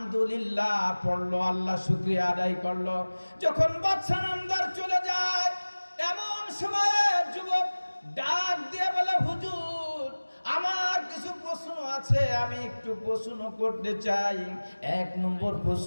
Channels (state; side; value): inverted; both; correlation -1.00